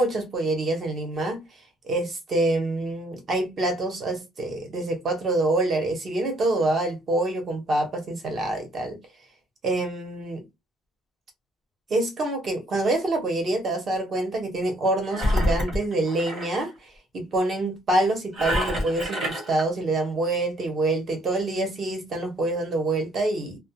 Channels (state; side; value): normal; both; correlation 0.65